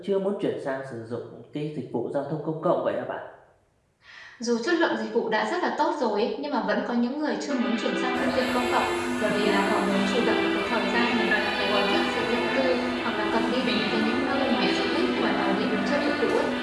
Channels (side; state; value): both; identical; correlation 1.00